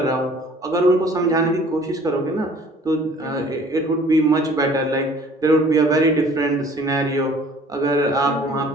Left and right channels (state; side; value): normal; both; correlation 0.52